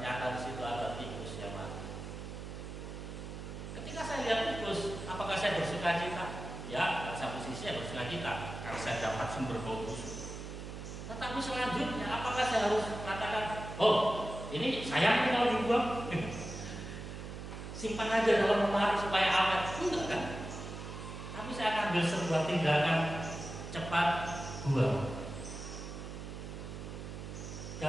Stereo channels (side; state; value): right; noise; hum, 9 dB below the sound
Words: di situ ada tikus yang mati. Ketika saya lihat tikus, apakah saya bersuka cita? Ya, satu sisi saya bersuka cita karena saya dapat sumber bau busuk. Tetapi selanjutnya, apakah saya harus katakan, oh ini sayang kalau dibuang, simpan aja dalam lemari supaya awet? Enggak kan? Tapi saya akan ambil sebuah tindakan cepat buang.